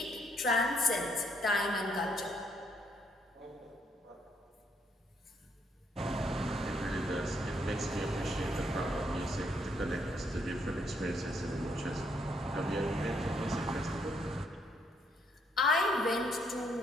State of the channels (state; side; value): normal; both; correlation 0.72